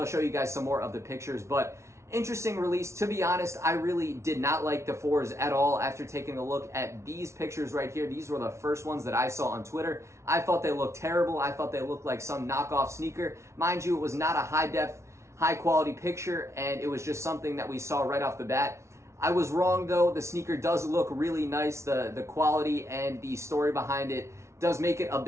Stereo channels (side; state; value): left; late; 0.13 ms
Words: show you guys some more of the pictures. But interesting release. To be honest, I really did not like the 4s at all after taking a look at these pictures right here. These were the first ones that I saw on Twitter. I thought they looked terrible. I thought they looked like some knockoff sneaker. Mind you, it was not a high quality picture, and it was just something that we saw right off the bat. I was wrong though. The sneaker does look really nice. The quality and the story behind it does make it a